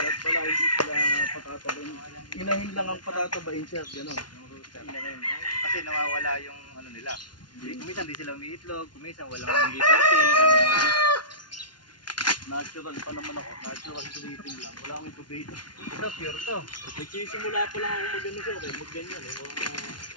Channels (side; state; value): right; late; 0.70 ms